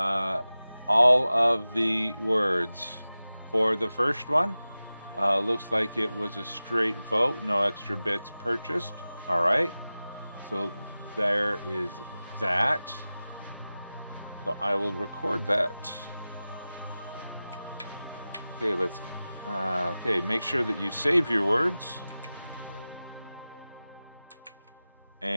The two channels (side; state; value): both; inverted; correlation -0.96